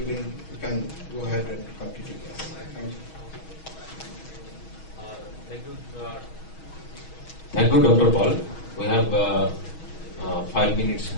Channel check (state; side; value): late; right; 6.3 ms